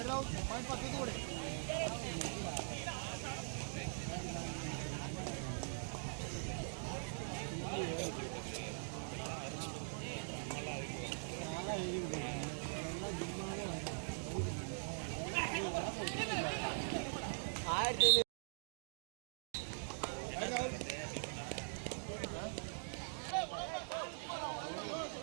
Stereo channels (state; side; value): silent; left; digital silence